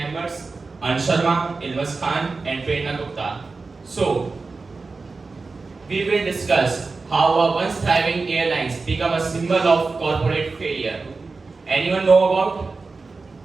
Ansh Sharma, Ilmas Khan, and Prerna Gupta. So, we will discuss how a once thriving airlines become a symbol of corporate failure. Anyone know about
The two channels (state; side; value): quieter; left; 4.0 dB